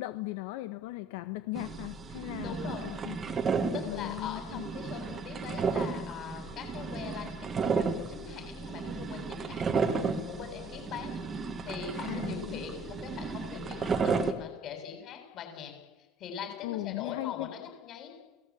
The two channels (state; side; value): normal; both; correlation 0.56